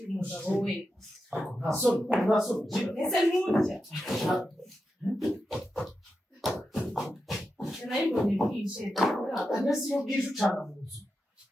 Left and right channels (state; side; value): normal; both; correlation 0.89